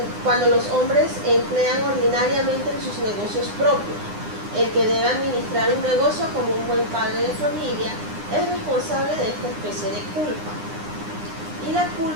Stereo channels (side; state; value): left; late; 9.7 ms